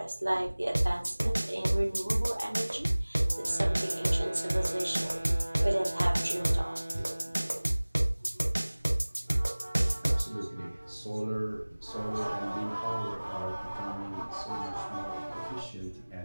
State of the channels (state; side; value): inverted; both; correlation -1.00